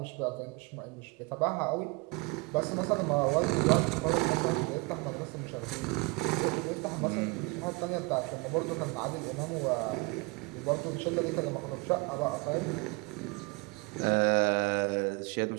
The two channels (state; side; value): quieter; left; 27.0 dB